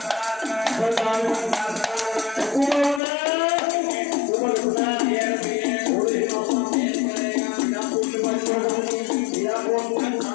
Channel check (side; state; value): right; drops out; at 3.0 s